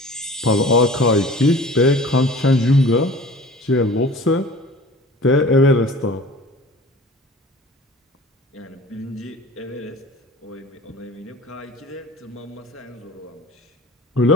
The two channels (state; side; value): normal; both; correlation 0.42